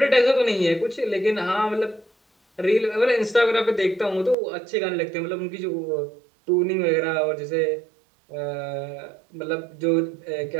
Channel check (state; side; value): drops out; left; at 4.4 s